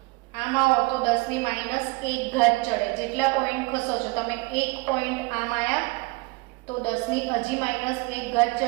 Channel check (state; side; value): quieter; left; 24.9 dB